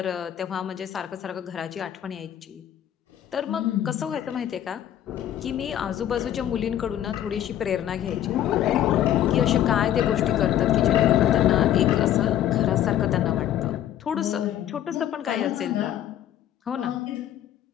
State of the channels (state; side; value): quieter; right; 11.4 dB